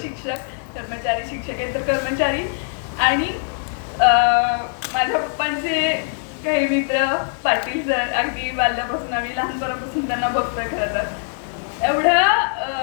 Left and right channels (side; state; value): right; silent; 62 dB below the other